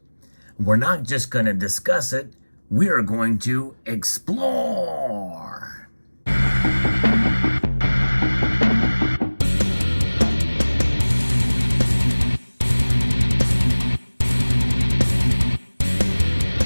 We're not just going to discuss it, we are going to explore.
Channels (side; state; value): both; inverted; correlation -1.00